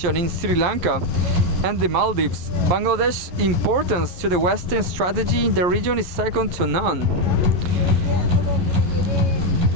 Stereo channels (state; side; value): late; left; 11 ms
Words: in Sri Lanka and the Maldives, Bangladesh's importance to the Western strategy in the region is second to none.